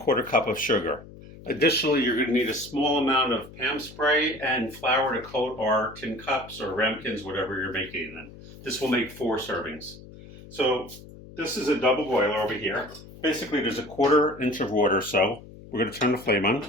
cup of sugar. Additionally, you're going to need a small amount of Pam spray and flour to coat our tin cups or ramekins, whatever you're making in. This will make 4 servings. So this is a double boiler over here. Basically, there's a 1/4 inch of water, so we're going to turn the flame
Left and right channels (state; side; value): noise; left; hum, 18 dB below the sound